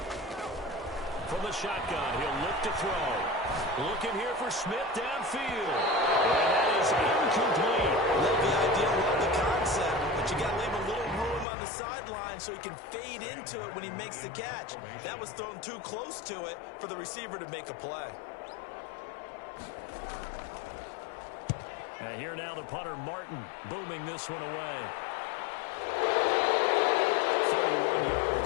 From the shotgun, he'll look to throw. Looking here for Smith downfield. And that is incomplete. Love the idea, love the concept, but you got to leave a little room on the sideline so he can fade into it when he makes the catch. That was thrown too close to it for the receiver to make a play. And here now the punter, Martin, booming this one away. 31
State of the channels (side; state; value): right; drops out; at 11.5 s